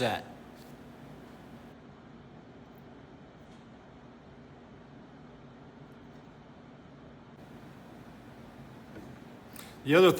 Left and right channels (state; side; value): identical; both; correlation 1.00